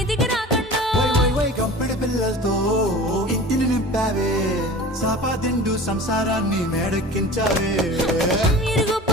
రాకండా వై కంపెడి పిల్లలతో ఇంటిని నింపావే సాపాదిండు సంసారాన్ని మేడెక్కించావే ఇరుగు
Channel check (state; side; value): normal; both; correlation 0.38